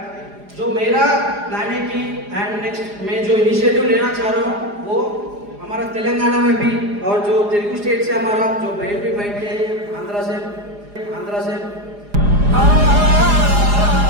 जो मेरा प्लान है कि एंड नेक्स्ट मैं जो इनिशिएटिव लेना चाह रहा हूँ वो हमारा तेलंगाना में भी, और जो तेलुगु स्टेट से हमारा जो बहन भी बैठे हैं आंध्रा से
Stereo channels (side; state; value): left; late; 4.9 ms